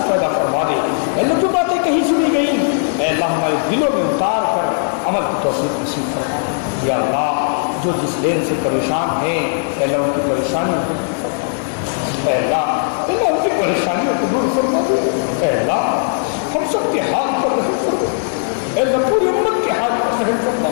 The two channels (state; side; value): silent; right; digital silence